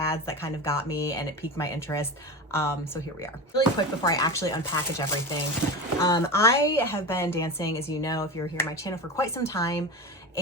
that kind of got me and it piqued my interest. So here we are. Really quick before I actually unpackage everything. I have been dancing, as you know, if you're here on my channel, for quite some time.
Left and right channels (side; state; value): both; normal; correlation 0.25